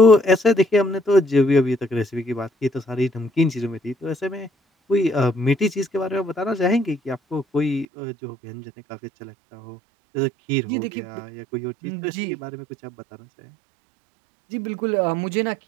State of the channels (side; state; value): left; drops out; at 7.9 s